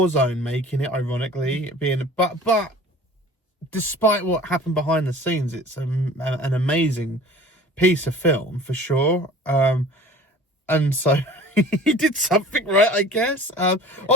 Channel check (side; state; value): both; normal; correlation 0.43